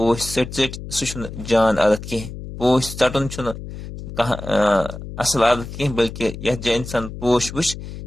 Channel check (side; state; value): left; noise; hum, 11 dB below the sound